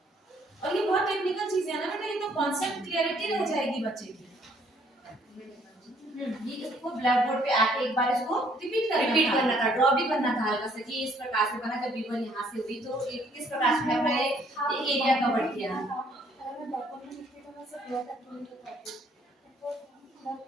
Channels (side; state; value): both; normal; correlation 0.64